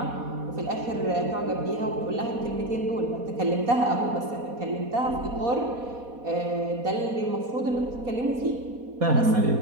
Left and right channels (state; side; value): late; left; 4.1 ms